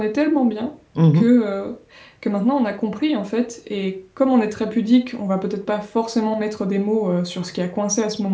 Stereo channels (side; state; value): both; identical; correlation 1.00